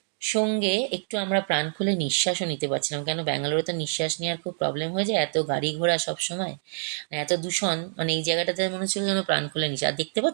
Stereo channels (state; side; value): silent; left; digital silence